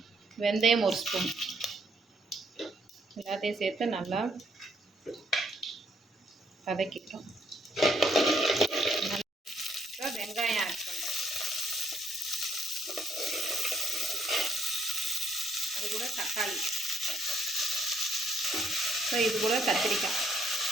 வெந்தயம் ஒரு ஸ்பூன். எல்லாத்தையும் சேர்த்து நல்லா வதக்கிட்டோம். இப்போ வெங்காயம் ஆட் பண்ணுறோம். அது கூட தக்காளி, இப்போ இது கூட கத்திரிக்காய்.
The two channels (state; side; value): normal; both; correlation 0.69